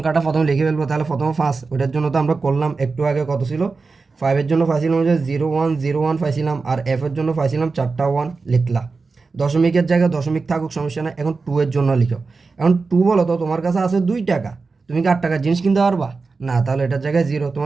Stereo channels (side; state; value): left; quieter; 4.2 dB